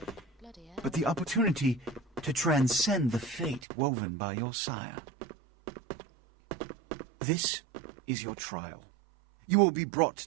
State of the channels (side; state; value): left; drops out; at 3.6 s